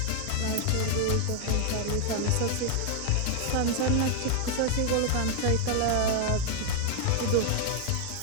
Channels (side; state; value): both; different; correlation 0.00